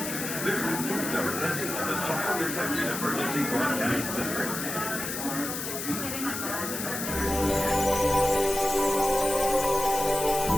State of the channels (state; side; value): noise; left; hiss, 5 dB below the sound